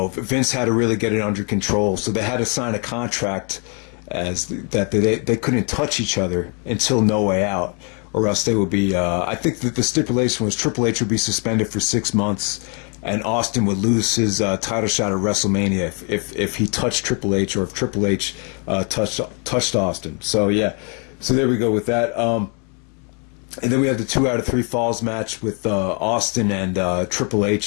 had to really get it under control. So they had to sign a contract that they couldn't touch each other until No Way Out. Or else they would be, I think that the stipulation was Triple H would be suspended for 6 months, and Austin would lose his title shot at WrestleMania if he touched Triple H, or if Triple H touched Austin. So yeah, so there we go with that. And then we have the 2 out of 3 falls match with Austin and Triple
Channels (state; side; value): quieter; right; 37.0 dB